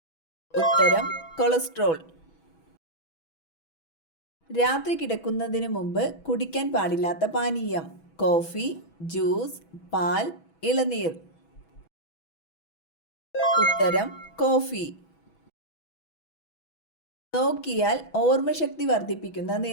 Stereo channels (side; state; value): right; late; 6.1 ms